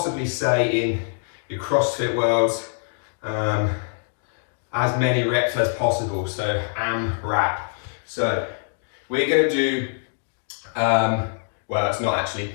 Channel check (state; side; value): silent; right; digital silence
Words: say in your CrossFit worlds, as many reps as possible, so AMRAP. So, we're going to do, well it's not actually,